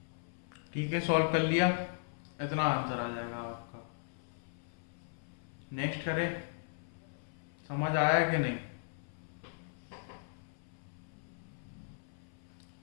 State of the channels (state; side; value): silent; right; 53 dB below the other